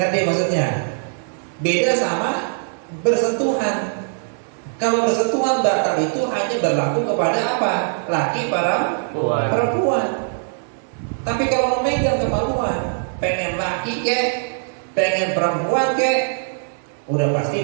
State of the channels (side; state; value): left; silent; 60 dB below the other